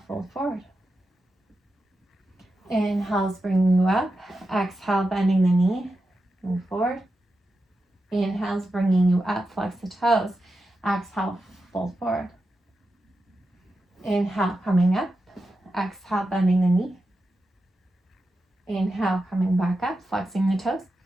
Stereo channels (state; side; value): normal; both; correlation 0.89